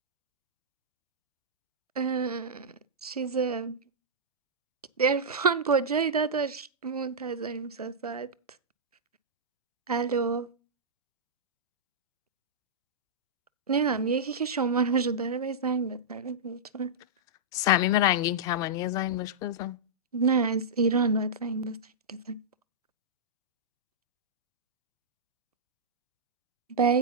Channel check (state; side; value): normal; both; correlation -0.12